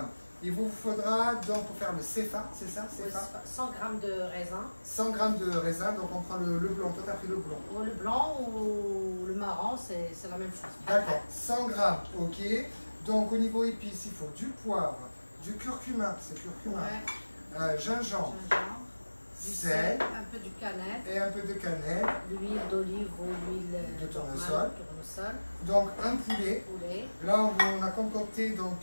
Il vous faudra, donc pour faire le Sefa, c'est ça, Oui, Sefa 100 grammes de raisin. 100 grammes de raisin, donc on prend le blanc. Toi, t'as pris le blanc. Ou le blanc ou le marron, c'est la même chose. D'accord, 100 grammes, ok. Donc au niveau épices, il faut du poivre, du curcuma, c'est curcuma, Ouais. gingembre, Gingembre, du sel un peu du cannelle, et un peu de cannelle. l'huile d'olive ou l'huile De tournesol. tournesol, Donc un poulet. poulet. Là, on a concocté donc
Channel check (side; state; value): both; inverted; correlation -1.00